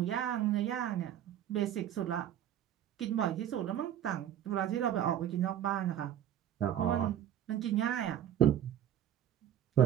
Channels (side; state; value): left; quieter; 10.7 dB